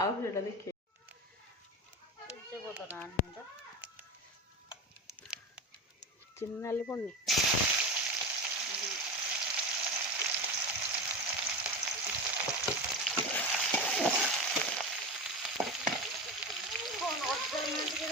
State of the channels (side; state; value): both; normal; correlation 0.23